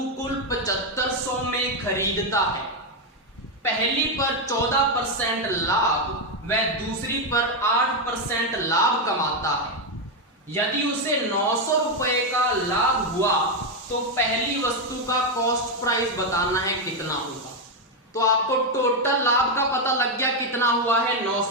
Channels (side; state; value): both; normal; correlation 0.05